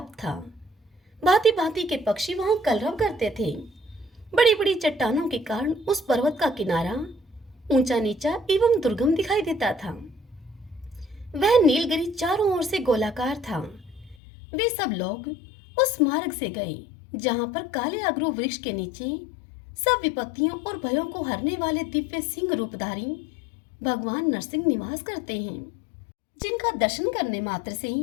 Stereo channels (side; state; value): right; drops out; at 14.2 s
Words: था। भांति भांति के पक्षी वहां कलरव करते थे। बड़ी बड़ी चट्टानों के कारण उस पर्वत का किनारा ऊंचा नीचा एवं दुर्गम दिखाई देता था। वह नीलगिरी चारों ओर से गोलाकार था। वे सब लोग उस मार्ग से गए जहां पर काले अगरू वृक्ष के नीचे सब विपत्तियों और भयों को हरने वाले दिव्य सिंह रूपधारी भगवान नरसिंह निवास करते हैं, जिनका दर्शन करने मात्र से